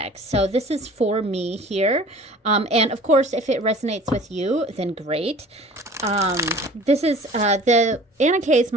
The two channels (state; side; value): normal; both; correlation 0.46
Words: So this is for me here. And of course, if it resonates with you, then great. This is the Anna Kay is